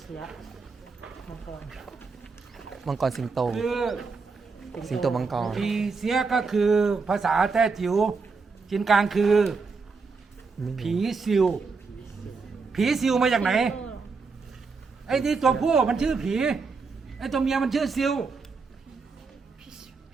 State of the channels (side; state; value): left; quieter; 4.6 dB